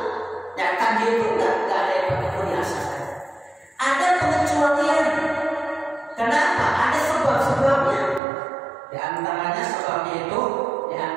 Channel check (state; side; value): drops out; left; at 8.2 s